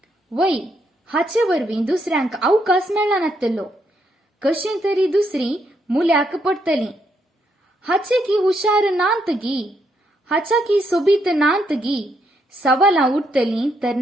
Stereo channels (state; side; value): normal; both; correlation 0.76